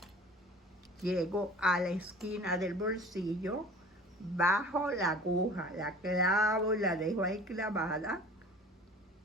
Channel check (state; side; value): normal; both; correlation 0.44